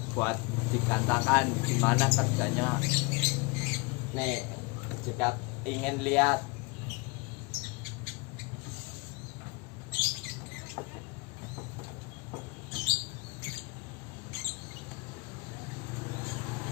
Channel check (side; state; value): right; quieter; 28.1 dB